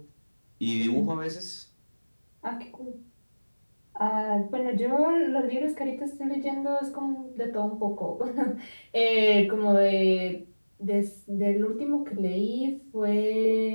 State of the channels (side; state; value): both; inverted; correlation -1.00